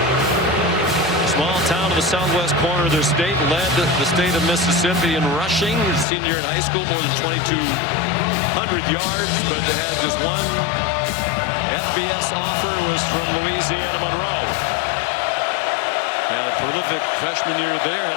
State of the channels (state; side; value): drops out; right; at 6.1 s